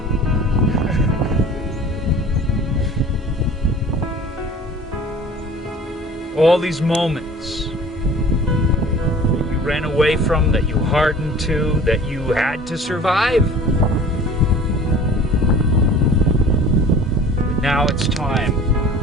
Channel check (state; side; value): normal; both; correlation 0.45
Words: All these moments that you ran away from, that you hardened to, that you had to survive. But now it's time.